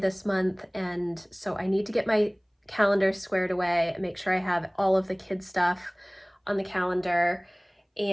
month, and so I need to get my calendar squared away and make sure I have all of the kids' stuff on the calendar.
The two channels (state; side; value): identical; both; correlation 1.00